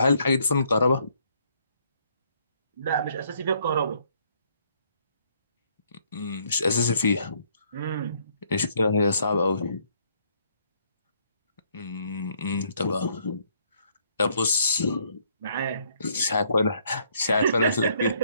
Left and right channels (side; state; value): both; inverted; correlation -0.67